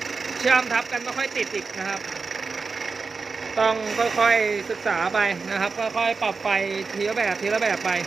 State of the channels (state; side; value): quieter; left; 4.6 dB